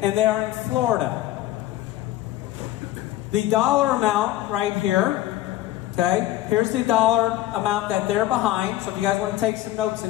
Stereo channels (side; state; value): right; quieter; 14.9 dB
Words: and they are in Florida. The dollar amount right here, okay, here's the dollar amount that they're behind. So if you guys want to take some notes